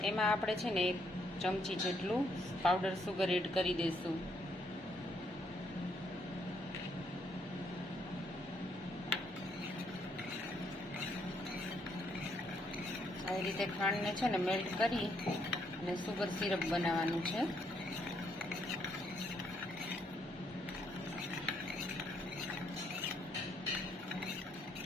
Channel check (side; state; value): both; normal; correlation 0.72